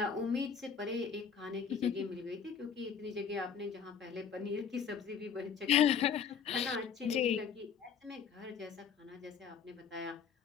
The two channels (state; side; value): quieter; right; 6.9 dB